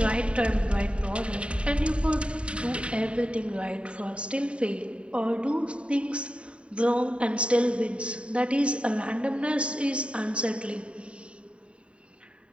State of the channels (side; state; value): left; late; 0.058 ms